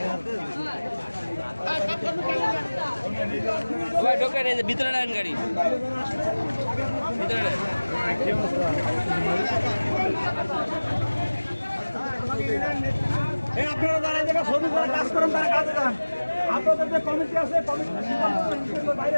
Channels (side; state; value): both; inverted; correlation -1.00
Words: ভিতরে নেন গাড়ি, ভিতরে নেন। আপনারা যারা এই জায়গায় শ্রমিক করে কাজ করেন তারা কাজে যান। আপনাদের যে কমিটি আছে কমিটির বাইরে